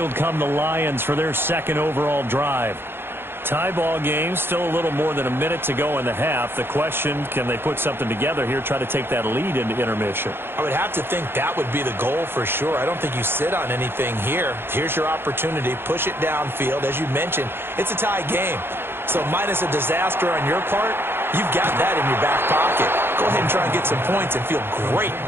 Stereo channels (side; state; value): left; late; 0.11 ms